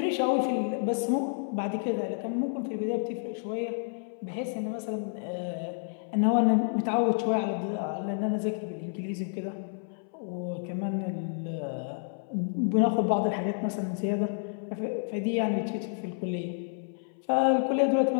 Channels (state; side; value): silent; right; 58 dB below the other